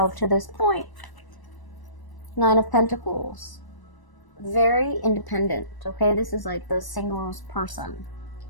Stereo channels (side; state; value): right; late; 1.0 ms